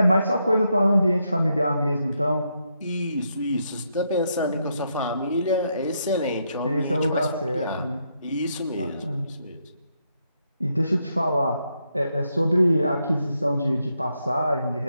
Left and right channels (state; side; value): inverted; both; correlation -0.79